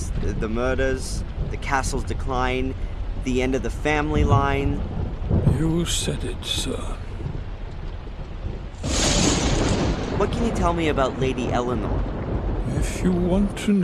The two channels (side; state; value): both; identical; correlation 1.00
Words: the murders, the castle's decline, the end of the family line. You said it, sir. What can you tell me about Lady Eleanor? If you want to